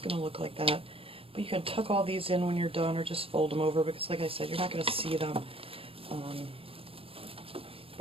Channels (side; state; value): left; late; 0.27 ms